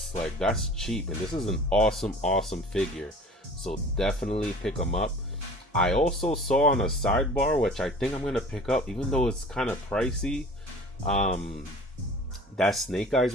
like that's cheap, and this is an awesome figure, so definitely pick him up. I also saw on a sidebar, which I think I'm going to pick up, even though it's kind of pricey, that Snake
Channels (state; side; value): normal; both; correlation 0.44